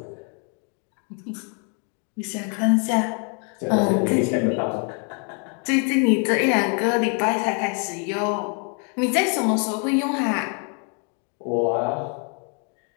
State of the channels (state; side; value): quieter; right; 39.9 dB